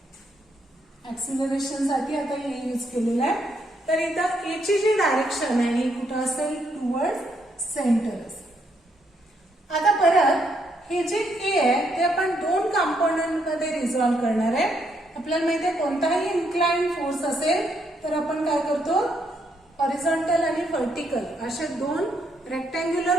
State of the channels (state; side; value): normal; both; correlation 0.75